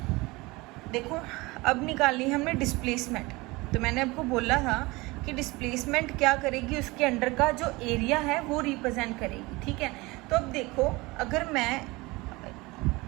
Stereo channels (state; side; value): quieter; left; 22.8 dB